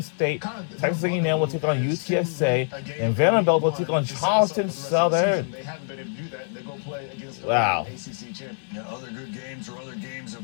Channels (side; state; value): right; silent; digital silence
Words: Texas A&M will take on UTSA, and Vanderbilt will take on Charleston Southern. Wow. Other good games or other games